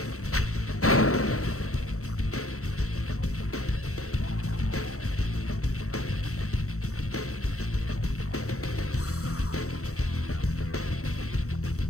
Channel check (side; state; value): right; late; 0.64 ms